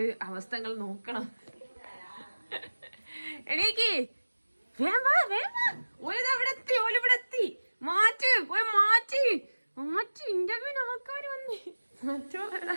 അവസ്ഥകൾ നോക്കണം. എണീക്ക്. ഓലിവിടെ മാറ്റി ഇന്റർവ്യൂവിന് ആൾക്കാർ വന്നേ.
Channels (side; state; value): both; inverted; correlation -1.00